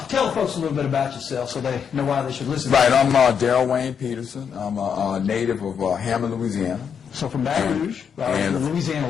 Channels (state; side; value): quieter; right; 7.2 dB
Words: Tell the folks a little bit about yourself so they know why they should listen. Right, I'm Daryl Wayne Peterson. I'm a native of Hammond, Louisiana. So from Baton Rouge, in the Louisiana